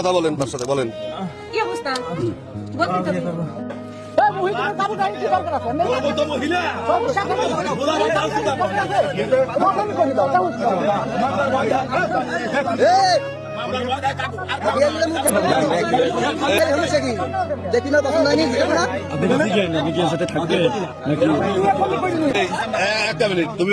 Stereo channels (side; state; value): both; identical; correlation 1.00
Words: বলেন তার সাথে, বলেন কি অবস্থা বলতে হবে। দেখি না পছন্দ হয়নি সাথে থাকবে একটা মিনিট, তুমি